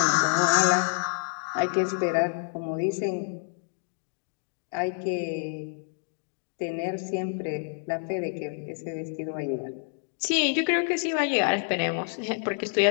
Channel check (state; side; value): silent; right; digital silence